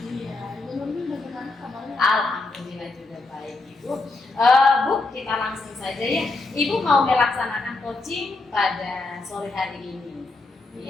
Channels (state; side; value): quieter; right; 3.4 dB